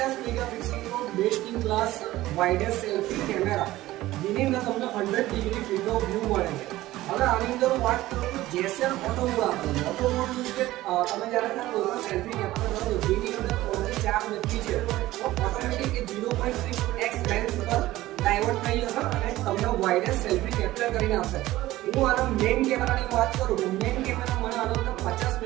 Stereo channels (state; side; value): quieter; left; 16.5 dB